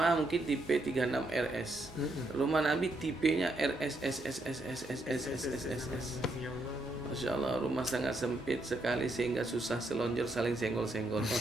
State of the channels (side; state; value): both; normal; correlation 0.77